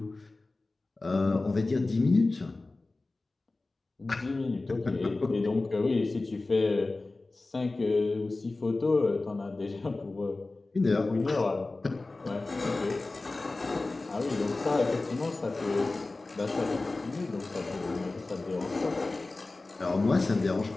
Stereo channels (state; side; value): quieter; right; 3.3 dB